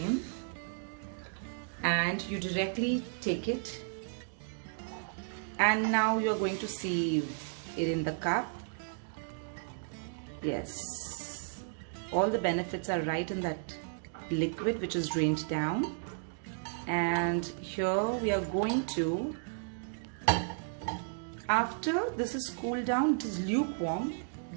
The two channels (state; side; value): silent; left; digital silence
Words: and you directly take it, and now you are going to see it in the cup. Yes, all the benefits are right in that liquid which is drained down. And here we are going to, after this is cooled down, it is lukewarm,